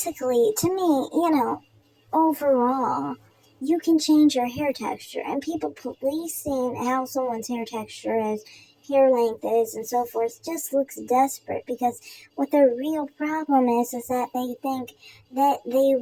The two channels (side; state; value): both; identical; correlation 1.00